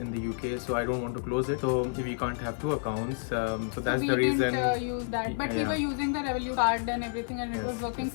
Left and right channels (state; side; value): silent; right; digital silence